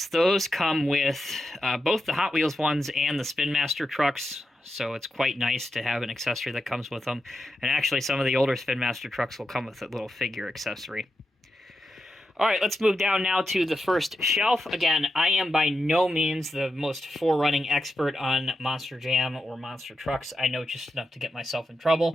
those come with both the Hot Wheels ones and the Spin Master trucks, so it's quite nice to have an accessory that comes with them. And actually, some of the older Spin Master trucks will come with a little figure accessory. Alright, let's move down now to the first shelf. Again, I am by no means the most forerunning expert on Monster Jam or monster trucks. I know just enough to get myself in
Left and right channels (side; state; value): both; normal; correlation 0.88